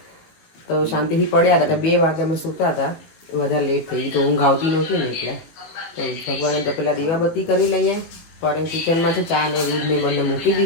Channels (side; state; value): right; late; 18 ms